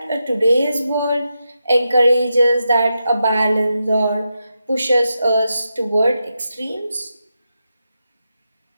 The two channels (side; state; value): both; inverted; correlation -0.87